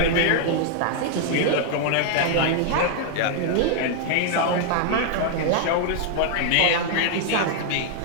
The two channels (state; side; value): different; both; correlation 0.00